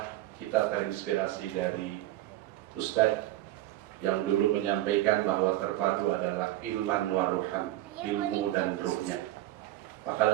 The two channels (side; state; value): left; quieter; 15.1 dB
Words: kita terinspirasi dari Ustadz yang dulu menyampaikan bahwa Terpadu adalah ilman waruhan, ilmu dan ruhnya. Maka